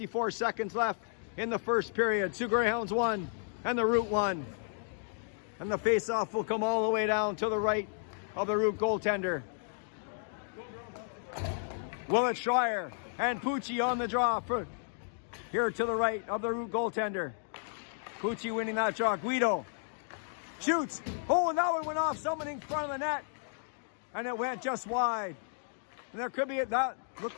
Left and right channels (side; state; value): right; silent; digital silence